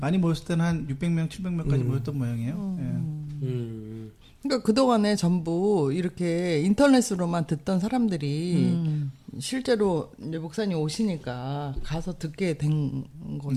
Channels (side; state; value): both; identical; correlation 1.00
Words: 모였을 때는 한 600명, 700명까지 모였던 모양이에요. 그러니까 그동안에 전부 이렇게 인터넷으로만 듣던 사람들이 실제로 이제 목사님 오시니까 가서 듣게 된